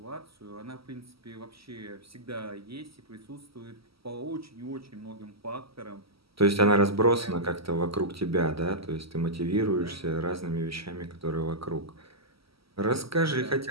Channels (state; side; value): late; left; 0.75 ms